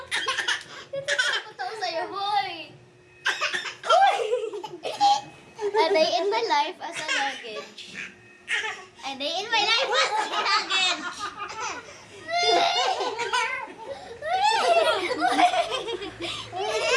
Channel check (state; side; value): identical; both; correlation 1.00